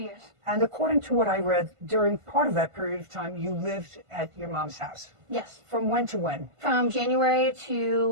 And according to what I read, during part of that period of time, you lived at your mom's house. Yes. From when to when? From January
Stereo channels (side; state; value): left; late; 1.5 ms